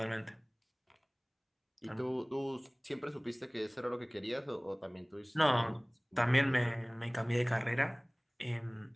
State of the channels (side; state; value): both; identical; correlation 1.00